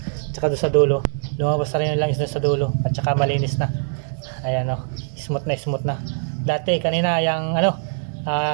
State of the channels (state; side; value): silent; left; 64 dB below the other